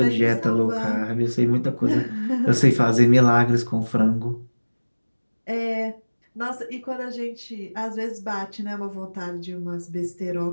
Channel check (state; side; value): inverted; both; correlation -1.00